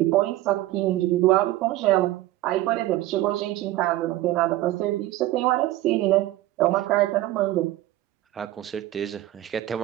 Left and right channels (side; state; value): left; quieter; 15.6 dB